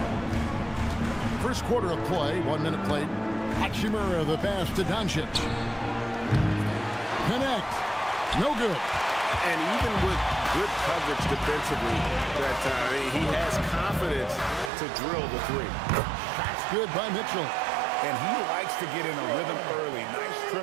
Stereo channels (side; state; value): left; drops out; at 14.7 s